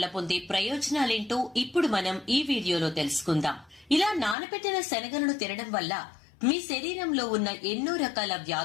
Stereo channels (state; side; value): drops out; right; at 4.4 s